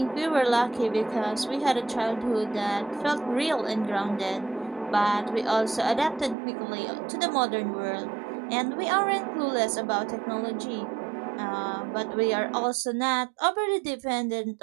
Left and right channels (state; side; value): drops out; left; at 6.4 s